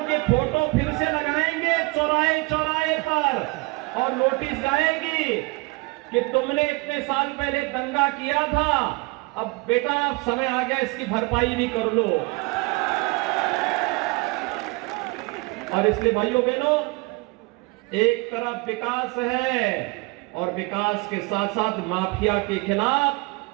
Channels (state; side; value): quieter; left; 25.3 dB